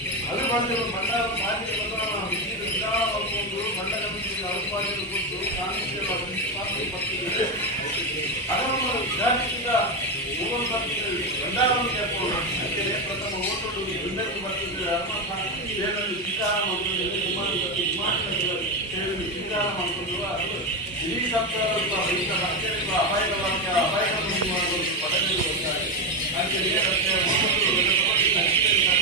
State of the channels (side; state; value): both; normal; correlation 0.11